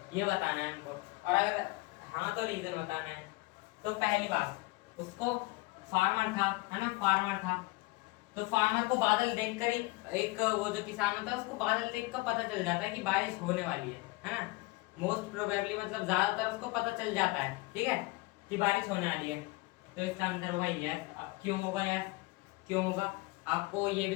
ये बताना है हमको। और अगर हाँ तो रीजन बताना है। तो पहली बात, उसको फार्मर था, है ना, फार्मर था, तो फार्मर को बादल देखकर ही, एक वो जो किसान होता है उसको बादल देखकर पता चल जाता है कि बारिश होने वाली है ना। मोस्ट प्रोबेबली मतलब ज्यादातर उसको पता चल जाता है, ठीक है, कि बारिश होने वाली है। तो इसका आंसर होगा यस। अब क्यों होगा यस, क्यों होगा, आपको ये भी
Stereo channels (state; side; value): quieter; right; 23.0 dB